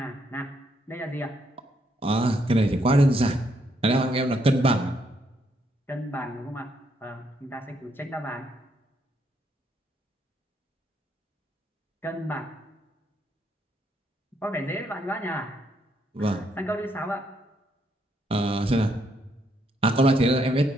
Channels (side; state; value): both; normal; correlation 0.74